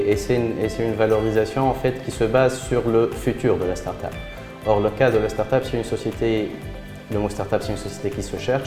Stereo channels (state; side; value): identical; both; correlation 1.00